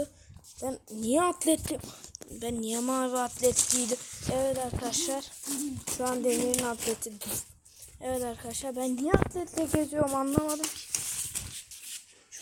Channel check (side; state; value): both; identical; correlation 1.00